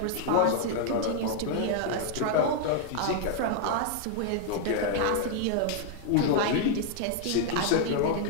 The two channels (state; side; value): different; both; correlation -0.01